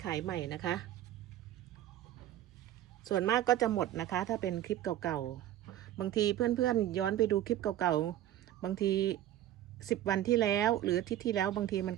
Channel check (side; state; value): left; quieter; 12.7 dB